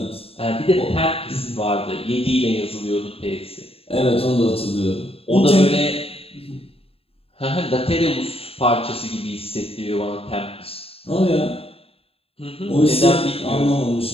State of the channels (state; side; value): late; right; 0.28 ms